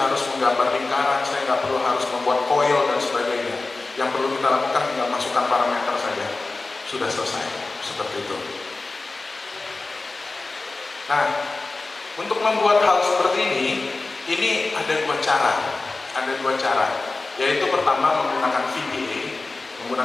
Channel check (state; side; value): quieter; right; 3.5 dB